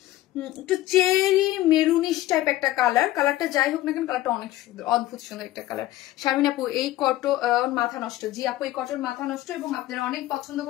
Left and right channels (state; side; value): quieter; right; 15.5 dB